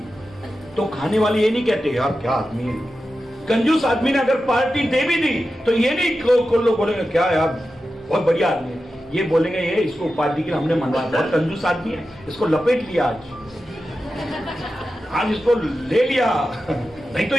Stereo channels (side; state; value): both; normal; correlation 0.92